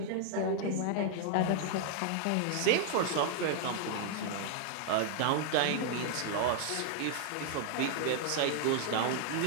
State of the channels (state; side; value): different; both; correlation 0.00